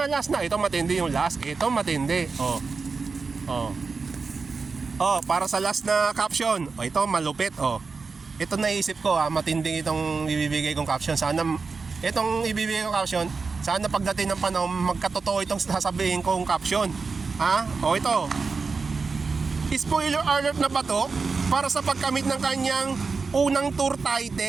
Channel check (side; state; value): left; quieter; 4.6 dB